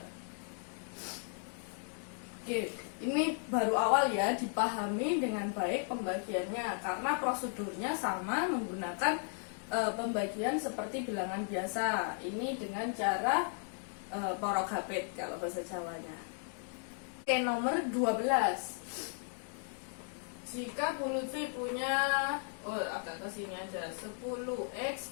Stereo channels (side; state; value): right; silent; 54 dB below the other